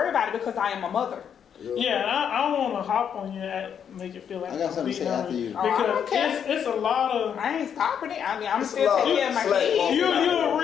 about it because I am a mother. Yeah, and I don't want to hop on you and make it feel like I got something to say after you. Oh, I don't Because care. it's a lot of. I ain't stopping it. I mean, I'm It's a still lot taking of care of my slack kids. walking. You're a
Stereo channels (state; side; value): quieter; right; 8.1 dB